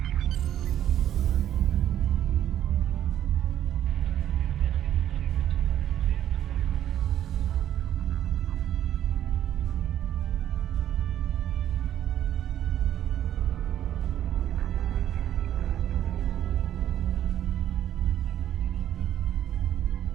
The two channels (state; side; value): quieter; left; 11.2 dB